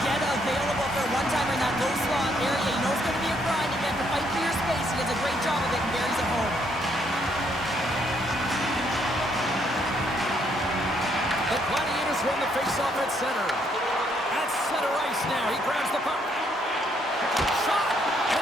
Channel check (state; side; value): normal; both; correlation 0.71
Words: get available for a one-timer in that low slot area. You know it's going to be a grind. You have to fight for your space. He does a great job of it and buries it home. The Gladiators won the face-off at center. At center ice now. He grabs the puck. Shot!